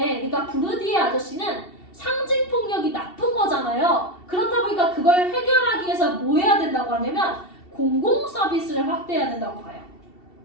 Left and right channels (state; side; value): late; right; 2.7 ms